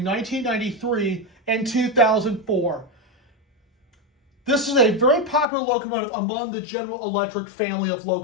1993 and 2004. This is a very popular locomotive among the General Electric family of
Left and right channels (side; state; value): right; drops out; at 5.5 s